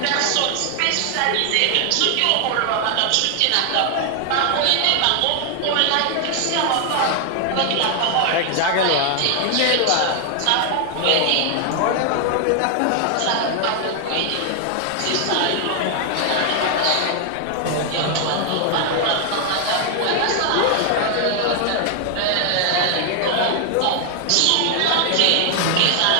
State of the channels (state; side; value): different; both; correlation 0.00